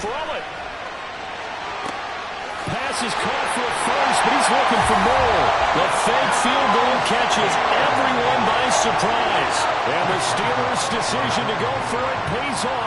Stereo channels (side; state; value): both; identical; correlation 1.00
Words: throw it. Pass is caught for a first, but he's looking for more. The fake field goal catches everyone by surprise. And the Steelers' decision to go for it pays